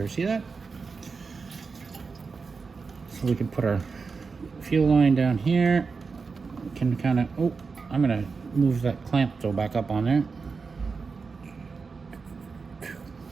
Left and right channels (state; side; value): quieter; left; 4.8 dB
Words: See that? So we can put our fuel line down here. We can kind of, oh, I'm gonna move that clamp though back up on there.